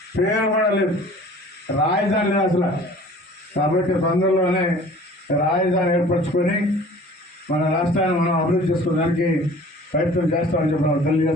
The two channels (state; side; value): normal; both; correlation 0.47